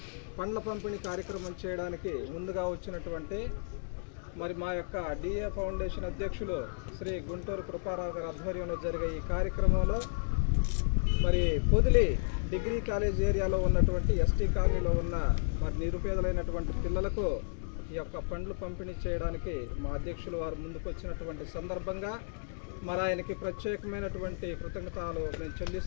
పండ్ల పంపిణీ కార్యక్రమం చేయడానికి ముందుగా వచ్చినటువంటి మా యొక్క డిఏ ఫౌండేషన్ అధ్యక్షులు శ్రీ గుంటూరు కృపారావు గారి ఆధ్వర్యంలో జరిగే ఈ కార్యక్రమంలో పొదిలి డిగ్రీ కాలేజ్ ఏరియాలో ఉన్నటువంటి ఎస్టీ కాలనీలో ఉన్న నిరుపేదలైనటువంటి పిల్లలకు ఈ యొక్క పండ్లు పంపిణీ చేయడానికి మా అధ్యక్షులు వారు ముందుకు వచ్చినటువంటి సందర్భంగా ఆయనకి ప్రత్యేకమైనటువంటి కృతజ్ఞతలు మేము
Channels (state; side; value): silent; right; digital silence